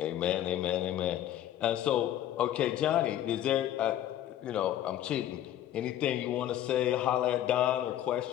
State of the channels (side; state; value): right; quieter; 12.0 dB